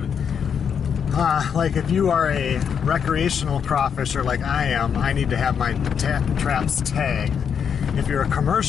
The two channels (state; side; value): quieter; right; 7.3 dB